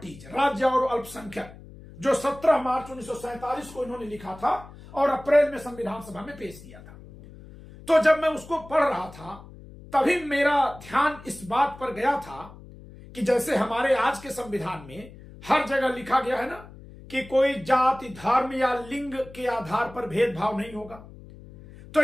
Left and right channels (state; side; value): noise; left; hum, 18 dB below the sound